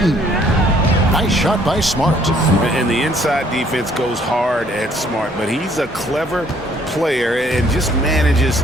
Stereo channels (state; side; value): normal; both; correlation 0.62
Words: Nice shot by Smart. And the inside defense goes hard at Smart, but he's a clever player and just manages